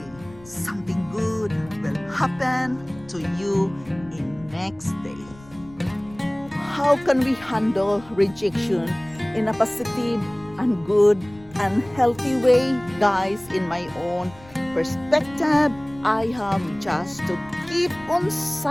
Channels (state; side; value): noise; left; rumble, 22 dB below the sound